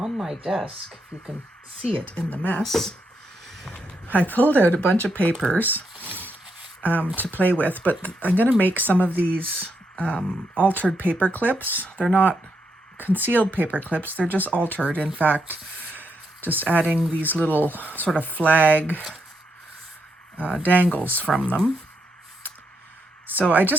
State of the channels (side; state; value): both; normal; correlation 0.80